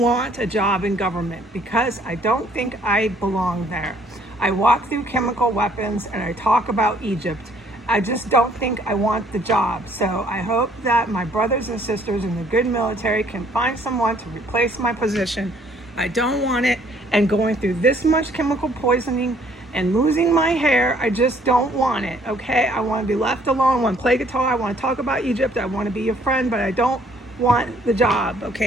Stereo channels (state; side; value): normal; both; correlation 0.62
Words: want a job in government because I don't think I belong there. I walk through chemical weapons and I talk about Egypt. I just don't think I want the job. So I hope that my brothers and sisters in the good military can find someone to replace my position. I don't want it, and going through this much chemical poisoning and losing my hair, I just don't want it, okay? I want to be left alone. I want to play guitar. I want to talk about Egypt. I want to be your friend, but I don't want the job,